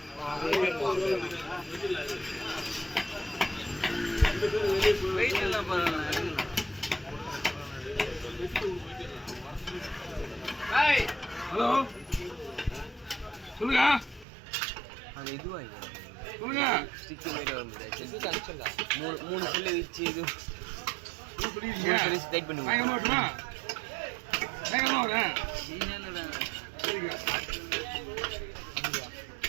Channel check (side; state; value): left; drops out; at 14.2 s